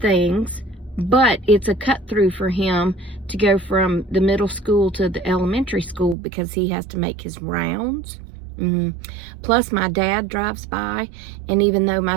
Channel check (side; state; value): left; drops out; at 6.2 s